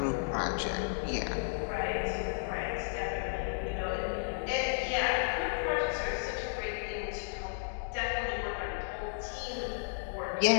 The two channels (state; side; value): silent; right; digital silence